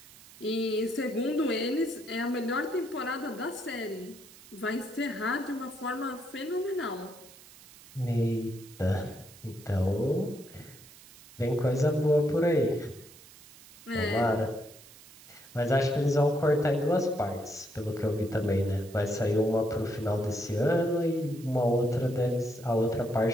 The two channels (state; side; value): noise; right; hiss, 21 dB below the sound